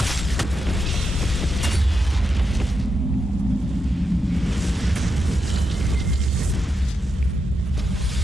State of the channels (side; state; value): both; normal; correlation 0.85